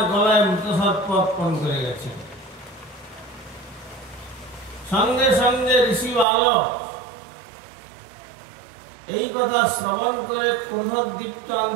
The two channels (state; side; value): drops out; left; at 6.2 s